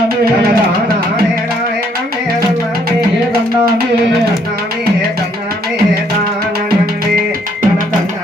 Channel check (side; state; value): both; normal; correlation 0.67